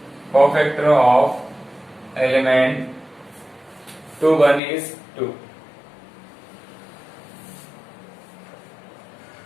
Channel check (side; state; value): right; drops out; at 4.6 s